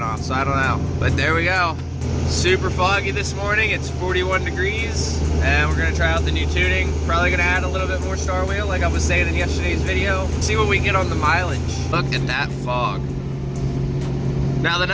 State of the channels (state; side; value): identical; both; correlation 1.00